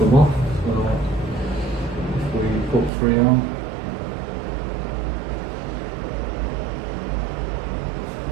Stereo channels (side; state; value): left; drops out; at 2.9 s